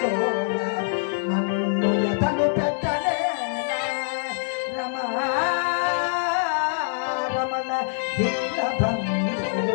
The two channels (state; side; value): silent; right; digital silence